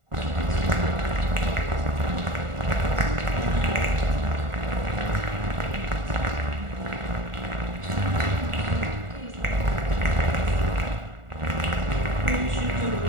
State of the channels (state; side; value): late; left; 1.4 ms